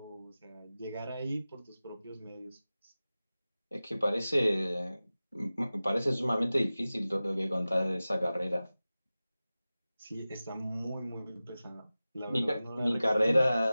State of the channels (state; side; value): inverted; both; correlation -0.96